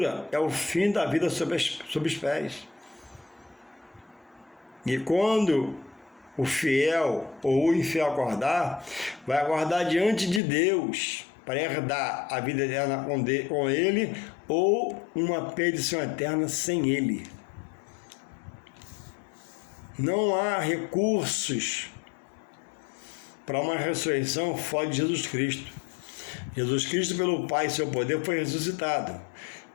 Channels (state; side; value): drops out; right; at 10.4 s